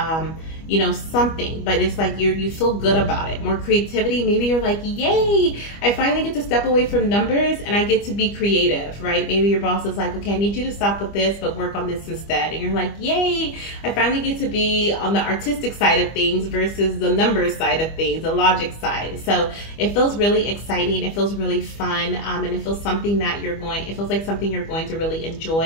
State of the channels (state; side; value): late; right; 25 ms